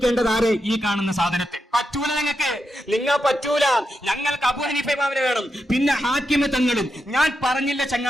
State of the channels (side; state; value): both; normal; correlation 0.86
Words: ആരെ? ഈ കാണുന്ന സാധനത്തെ. പറ്റൂല നിങ്ങൾ പറ്റൂല. ഞങ്ങൾക്ക് അബൂ ഹനീഫ ഇമാമിനെ വേണം. പിന്നെ ഹാക്കിം തങ്ങളും, ഞാൻ പറഞ്ഞില്ല